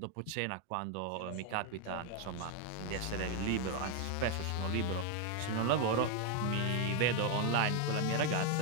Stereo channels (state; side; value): different; both; correlation 0.01